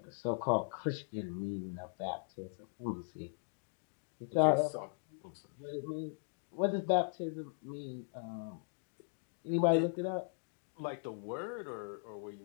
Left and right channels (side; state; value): right; silent; digital silence